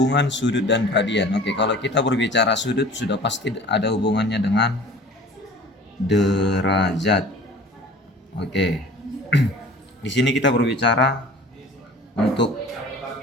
sudut dan radian. Oke, kalau kita berbicara sudut sudah pasti ada hubungannya dengan derajat. Oke. Di sini kita berbicara untuk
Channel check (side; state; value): both; normal; correlation 0.44